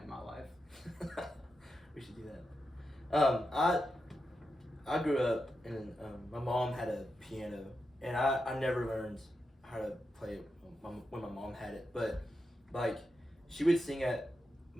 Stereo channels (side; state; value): both; normal; correlation 0.88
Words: in my life. We should do that. I grew up and my mom had a piano, and I never learned how to play it when my mom had it, but like she would sing at